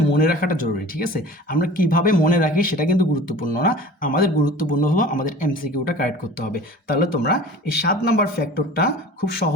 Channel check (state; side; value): normal; both; correlation 0.41